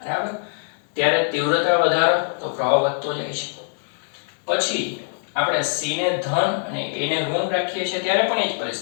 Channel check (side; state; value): right; silent; 57 dB below the other